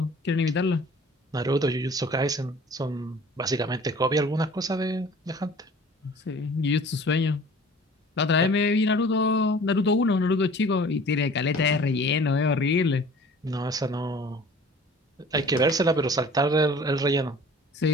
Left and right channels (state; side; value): normal; both; correlation 0.47